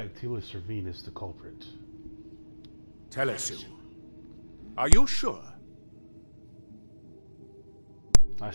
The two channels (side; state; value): both; inverted; correlation -1.00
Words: Telius Servine is the culprit. Telesu. Are you sure? I